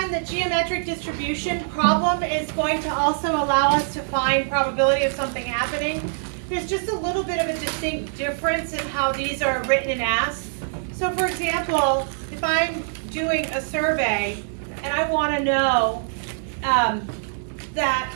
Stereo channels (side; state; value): left; silent; 63 dB below the other